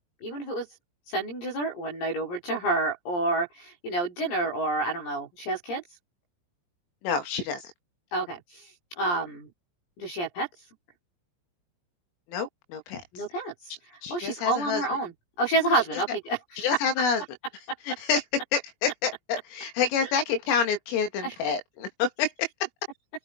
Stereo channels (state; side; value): late; right; 17 ms